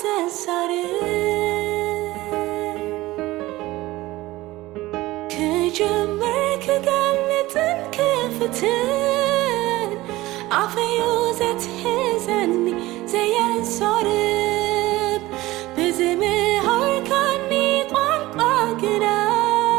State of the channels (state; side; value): quieter; left; 18.4 dB